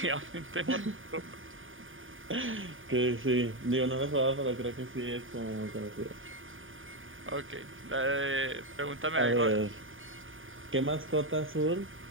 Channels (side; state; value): left; late; 0.58 ms